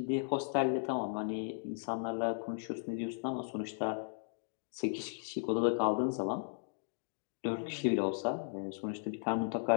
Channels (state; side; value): silent; right; digital silence